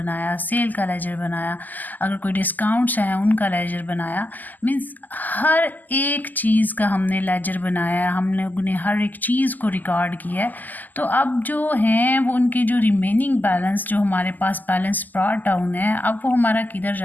सेल का लेजर बनाया, अगर कोई डिस्काउंट्स हैं उनका लेजर बनाया। मीन्स हर एक चीज़ का हमने लेजर बनाया, हम लोगों ने हर एक चीज़ को रिकॉर्ड किया है। तो अब जो हैं वो उनके जो रिमेनिंग बैलेंस जो हमारे पास बैलेंस ब्रॉट डाउन है, अब वो हमारा किधर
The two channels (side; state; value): right; late; 0.084 ms